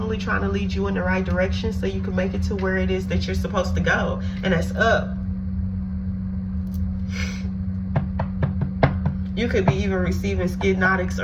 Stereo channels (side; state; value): both; identical; correlation 1.00